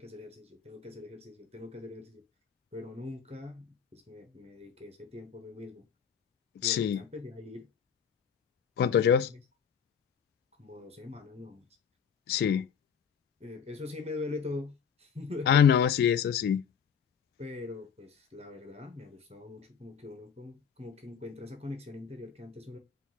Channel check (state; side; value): quieter; right; 7.5 dB